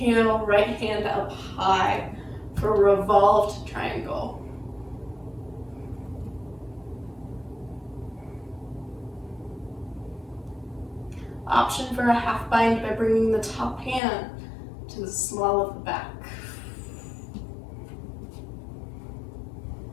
right hand up high for a revolved triangle. Option for a half bind by bringing the top hand to the small of the back.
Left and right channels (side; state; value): right; drops out; at 14.0 s